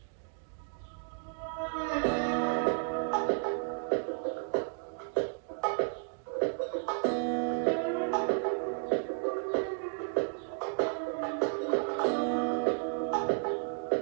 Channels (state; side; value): silent; left; digital silence